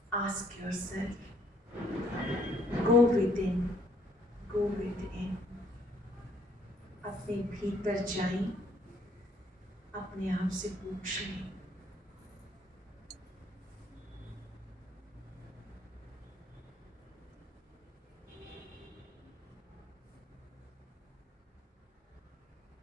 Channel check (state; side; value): normal; both; correlation 0.66